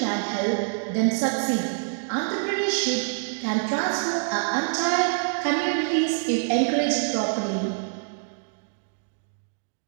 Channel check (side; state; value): left; silent; 59 dB below the other